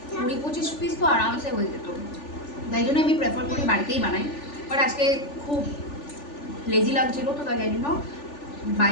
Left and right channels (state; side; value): late; right; 3.4 ms